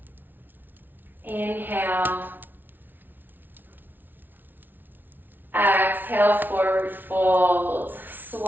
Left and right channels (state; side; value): late; left; 0.091 ms